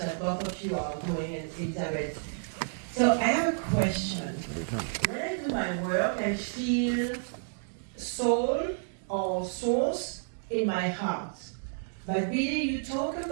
both of you are doing, and Elizabeth. So I have a question. When I do my work, I feel soul or source in my heart. But Billy, you talk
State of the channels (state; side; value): silent; left; digital silence